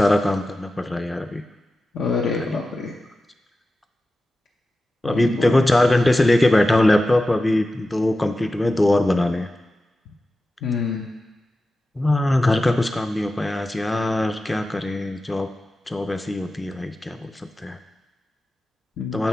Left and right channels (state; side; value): normal; both; correlation 0.93